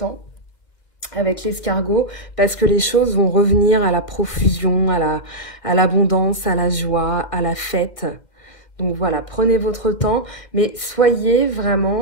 avec l'escargot parce que les choses vont revenir à la profusion, à l'abondance, à la joie, à la fête. Donc voilà, prenez votre temps, mais soyez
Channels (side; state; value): right; late; 2.3 ms